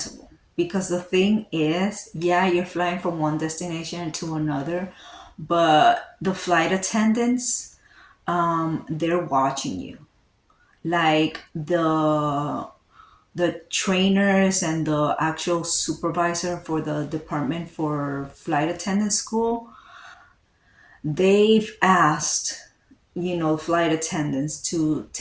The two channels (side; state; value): both; identical; correlation 1.00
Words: because the thing is, yeah, you're flying from one destination to another, but the flight attendants, they're watching you. Like the trainers and the actual supervisor for the department for flight attendant school, they've asked, flight attendants to